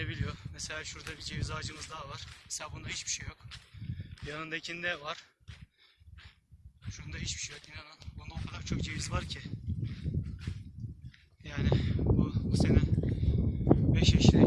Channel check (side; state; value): both; identical; correlation 1.00